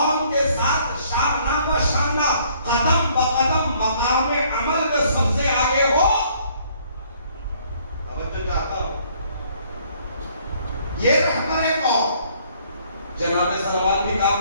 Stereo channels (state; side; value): inverted; both; correlation -0.62